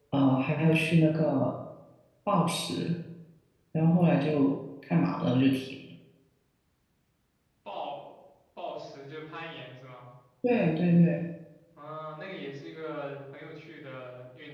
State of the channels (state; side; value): identical; both; correlation 1.00